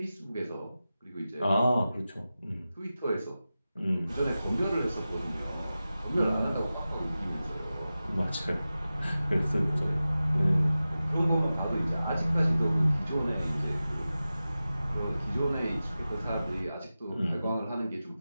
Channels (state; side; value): inverted; both; correlation -0.94